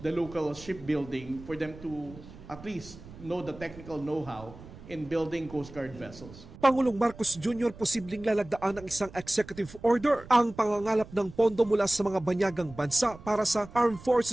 the local shipbuilding for them to at least know the technical know-how in building Coast Guard vessels. Pangulong Marcos Jr. posibleng lalagdaan ng isang executive order ang pangangalap ng pondo mula sa mga banyagang bansa para sa Armed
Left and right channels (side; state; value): right; noise; rumble, 18 dB below the sound